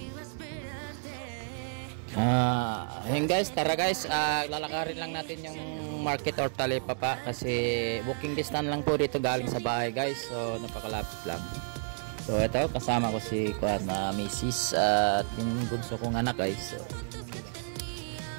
Ayun guys, tara guys, lalakarin lang natin yung market or Talipapa kasi walking distance lang po dito galing sa bahay guys, so napakalapit lang. So ito, kasama ko si Mrs. At yung bunso kong anak guys. So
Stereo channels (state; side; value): silent; left; digital silence